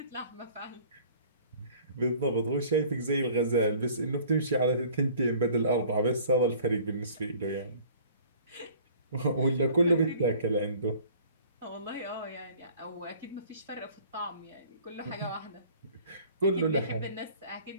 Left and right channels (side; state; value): both; inverted; correlation -0.51